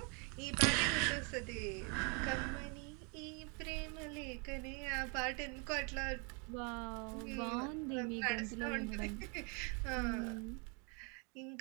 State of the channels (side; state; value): left; quieter; 34.7 dB